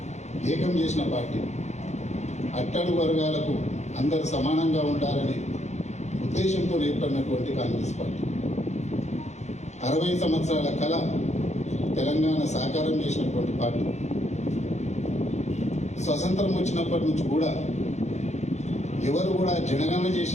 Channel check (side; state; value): right; late; 0.33 ms